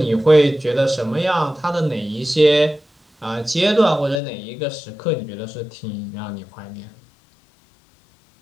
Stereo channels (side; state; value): right; drops out; at 4.2 s